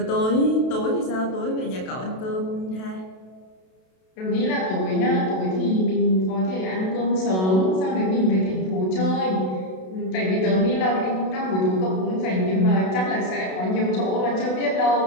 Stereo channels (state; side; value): late; right; 32 ms